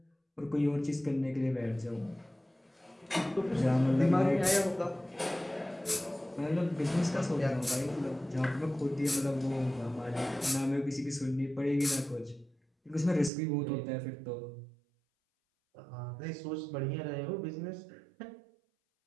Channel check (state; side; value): drops out; left; at 13.3 s